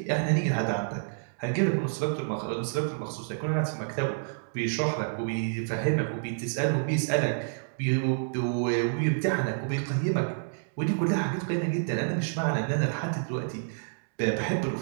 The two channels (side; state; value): left; silent; digital silence